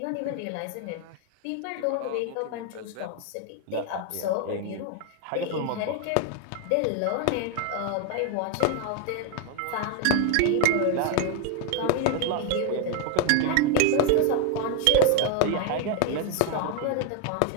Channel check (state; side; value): different; both; correlation 0.00